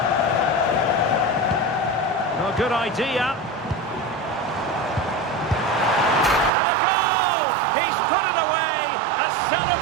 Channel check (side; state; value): left; drops out; at 6.5 s